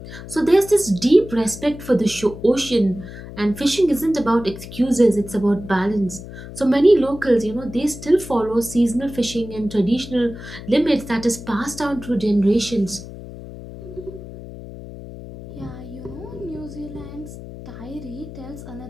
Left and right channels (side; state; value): left; noise; hum, 13 dB below the sound